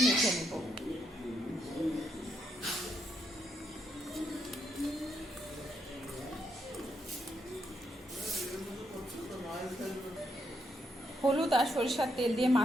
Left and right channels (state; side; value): normal; both; correlation 0.78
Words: মেখে নেব। হলুদ আর সরিষার তেল দিয়ে